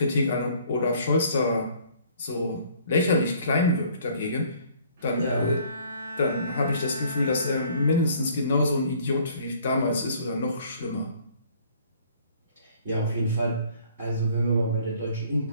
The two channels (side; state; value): both; inverted; correlation -0.58